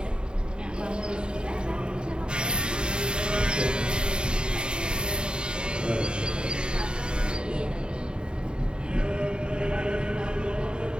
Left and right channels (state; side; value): late; left; 0.050 ms